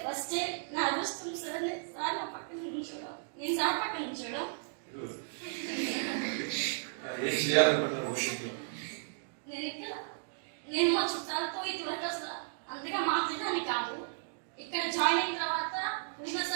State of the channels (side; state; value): left; silent; digital silence